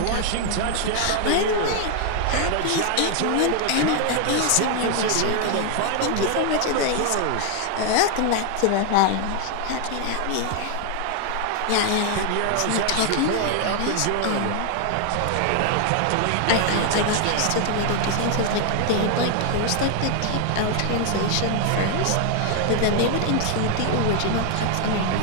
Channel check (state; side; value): different; both; correlation 0.00